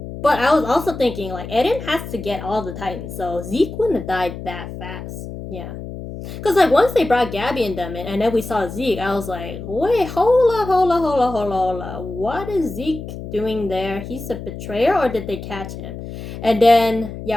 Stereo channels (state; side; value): noise; left; hum, 10 dB below the sound